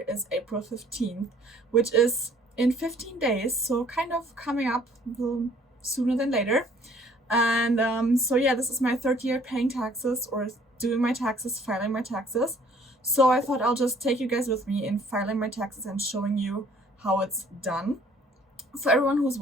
is April 15th, which is in 15 days, so kind of coming up a little sooner than later. And so yeah, this is my third year paying taxes or doing my taxes, filing my taxes. So I thought I'll just take you guys with me in filing my taxes and showing you how it's done. For everyone who's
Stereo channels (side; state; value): both; normal; correlation 0.58